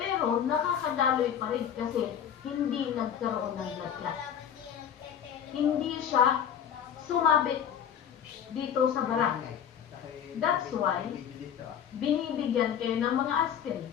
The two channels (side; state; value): right; quieter; 8.7 dB